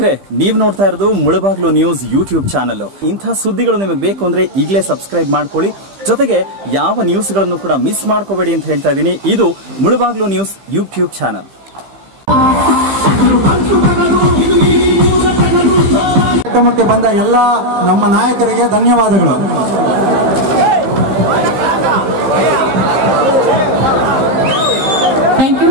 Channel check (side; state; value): left; late; 15 ms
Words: ನೀವು ನೋಡ್ತಾ ಇರೋದು ಮುಳಬಾಗ್ಲು ನ್ಯೂಸ್ ಯೂಟ್ಯೂಬ್ ಚಾನಲ್. ಇಂಥ ಸುದ್ದಿಗಳು ನಿಮಗೆ ಬೇಕು ಅಂದ್ರೆ ಈಗಲೇ ಸಬ್ಸ್ಕ್ರೈಬ್ ಮಾಡ್ಕೊಳ್ಳಿ. ಜೊತೆಗೆ ಯಾವ ನ್ಯೂಸ್ಗಳನ್ನು ಕೂಡ ಮಿಸ್ ಮಾಡ್ಕೋಬೇಡಿ ಅಂತ ಹೇಳ್ತಾ ಇದ್ದೀನಿ. ಇದು ಮುಳಬಾಗ್ಲು ನ್ಯೂಸ್ ಯೂಟ್ಯೂಬ್ ಚಾನಲ್. ಕಾರ್ಯಕ್ರಮಕ್ಕೆ ಬಂದ ಎಲ್ಲ ನಮ್ಮ ನಾಯಕರಿಗೆ ಧನ್ಯವಾದಗಳು.